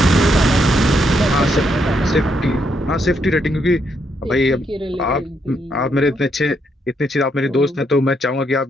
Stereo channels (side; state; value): both; normal; correlation 0.76